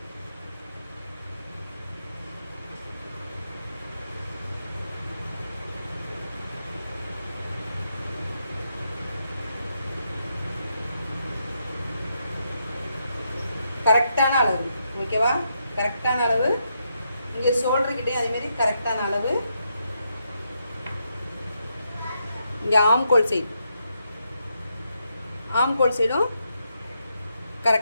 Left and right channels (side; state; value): both; inverted; correlation -0.81